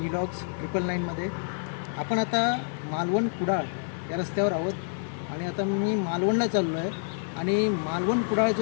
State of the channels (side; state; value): right; silent; digital silence